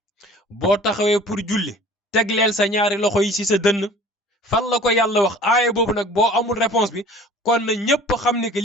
boo taxawee pour julli tegleel sa ñaari loxo yi ci sa dënn fan la ko yàlla wax aaya boobu nag boo amul réponse bi kon na ñëpp xam ni que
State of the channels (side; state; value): both; normal; correlation 0.46